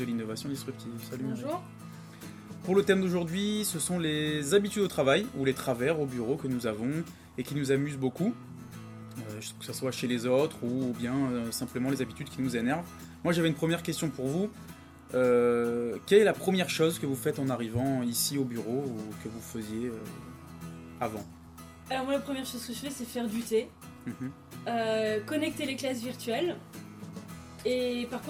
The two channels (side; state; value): both; identical; correlation 1.00